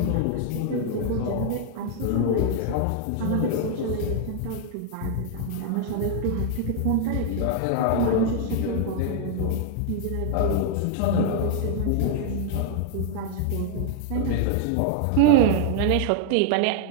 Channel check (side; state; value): both; different; correlation 0.00